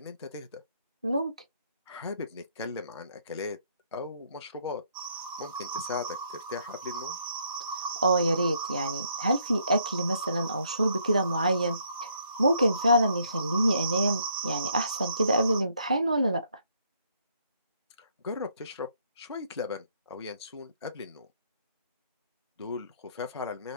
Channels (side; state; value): both; inverted; correlation -0.69